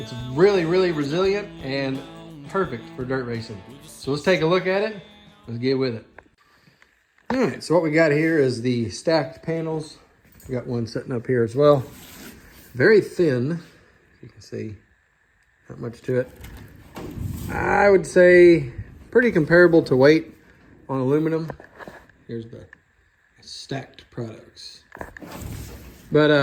really, really resilient and perfect for dirt racing. So let's take a look at it. Let's get with it. All right, so what we got here is the Stakt panels. We got one sitting up here as well. Very thin, you can see, not much to it. I would say pretty comparable to weight on aluminum. Here's the Stakt Products.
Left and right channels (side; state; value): both; identical; correlation 1.00